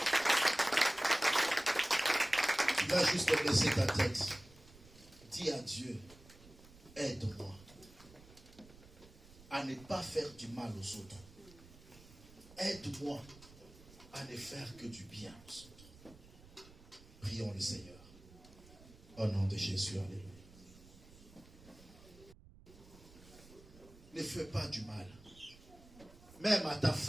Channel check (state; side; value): noise; right; rumble, 22 dB below the sound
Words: Tu vas juste baisser ta tête. Dis à Dieu, aide-moi à ne pas faire du mal aux autres. Aide-moi à ne faire que du bien aux autres. Prions le Seigneur. Au nom de Jésus, alléluia. Ne fais pas du mal. Même à ta